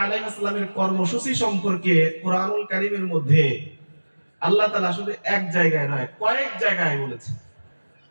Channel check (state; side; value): inverted; both; correlation -1.00